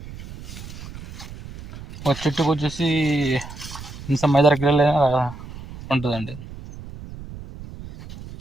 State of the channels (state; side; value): noise; right; rumble, 13 dB below the sound